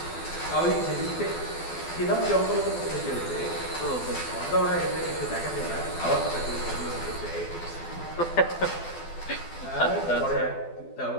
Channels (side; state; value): right; late; 12 ms